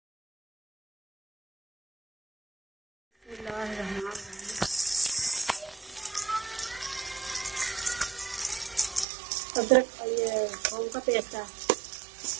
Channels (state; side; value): drops out; left; at 9.1 s